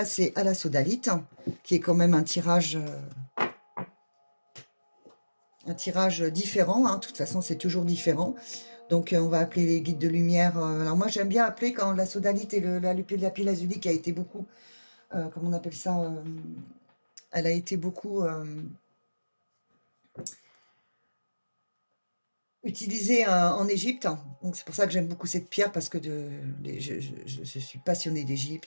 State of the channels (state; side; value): inverted; both; correlation -1.00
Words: à la sodalite, qui est quand même un tirage différent. Hein. De toute façon, c'est toujours différent. Donc, on va appeler les guides de lumière. Alors, moi, j'aime bien appeler quand la sodalite et la pile azulique a été beaucoup, comment on appelle ça, elle a été beaucoup utilisée en Égypte. Donc, c'est pour ça que j'aime beaucoup cette pierre, parce que je suis passionnée